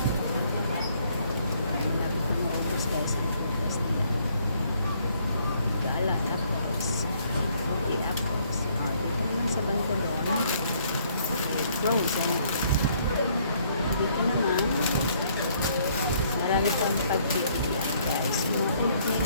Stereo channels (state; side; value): inverted; both; correlation -0.66